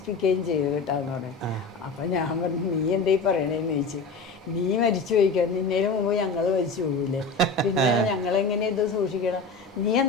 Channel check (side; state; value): right; quieter; 3.9 dB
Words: ചെയ്ത് കേട്ടാന്ന് പറയും. അപ്പം ഞാൻ പറഞ്ഞു, നീ എന്തേ പറയണേന്ന് ചോദിച്ചു. നീ മരിച്ചു പോയിക്കാൻ, നിന്നേലും മുമ്പ് ഞങ്ങൾ മരിച്ചു പോകില്ലേ, പിന്നെ ഞങ്ങളെങ്ങനെ ഇത് സൂക്ഷിക്കണം, നീ